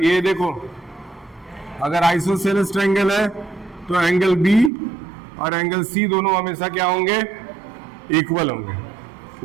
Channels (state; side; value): drops out; left; at 4.7 s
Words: ये देखो, अगर आइसोसेलेस ट्रायंगल है तो एंगल B और एंगल C दोनों हमेशा क्या होंगे, इक्वल होंगे,